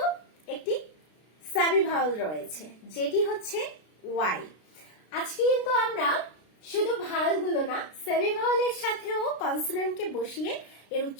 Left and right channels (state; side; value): late; right; 33 ms